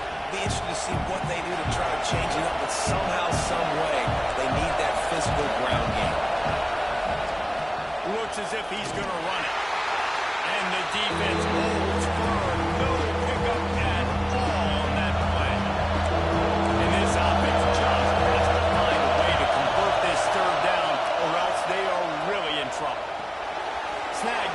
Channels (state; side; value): identical; both; correlation 1.00